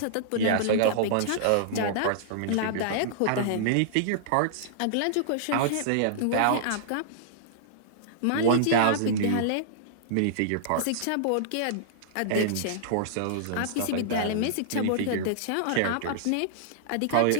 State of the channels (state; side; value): different; both; correlation -0.02